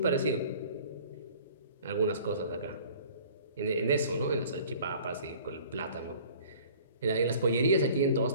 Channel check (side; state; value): both; inverted; correlation -0.49